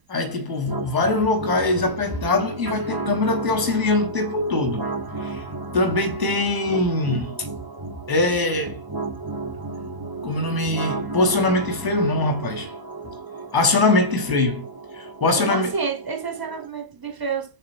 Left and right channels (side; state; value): left; late; 1.0 ms